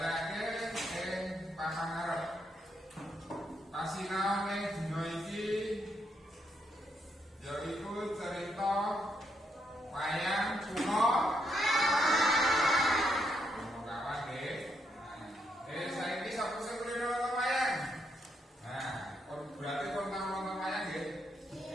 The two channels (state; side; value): normal; both; correlation 0.77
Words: ing papan ngarep. Pasinaone dina iki yaiku cerita wayang Punokawan nggih. Saiki sapa sing kulino nonton wayang? Nah, berarti kon tau nonton wayang nggih?